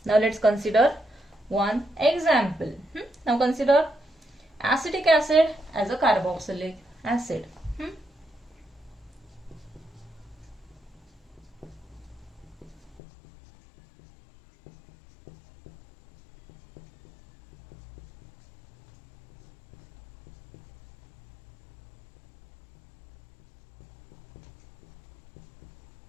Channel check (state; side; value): drops out; right; at 13.0 s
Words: Now let's consider one example. Now consider acetic acid as a carboxylic acid.